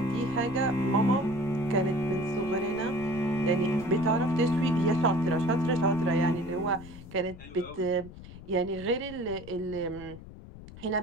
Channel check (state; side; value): noise; left; rumble, 16 dB below the sound